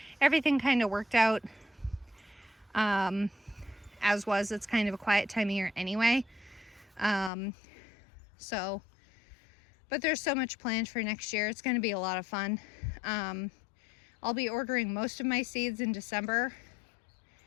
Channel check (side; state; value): right; drops out; at 7.3 s